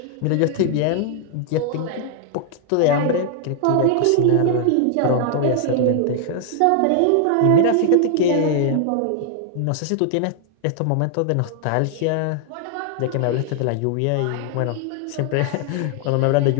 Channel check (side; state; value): both; different; correlation 0.00